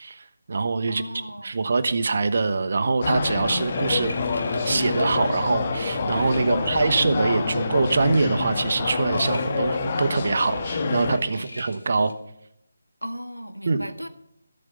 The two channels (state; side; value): inverted; both; correlation -0.88